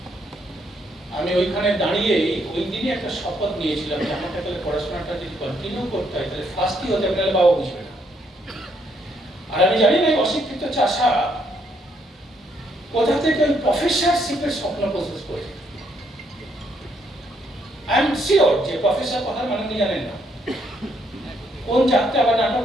আমি ওইখানে দাঁড়িয়ে ওই দিনই একটা শপথ নিয়েছিলাম যে আমাকে তাহলে পড়াশোনাটা যদি কন্টিনিউ করতে হয়, তাহলে ফার্স্টই হতে হবে, নাহলে বাবা বুঝবে না। আর আমি জানি না অশিক্ষিত চাষা কোথা থেকে ওই প্রফেসরশিপের স্বপ্ন প্রসেস করে। আই এম শিওর যে প্রফেসর কথার মানে উনি জানেন না। কোন যাত্রা বা নাটক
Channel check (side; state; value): both; normal; correlation 0.72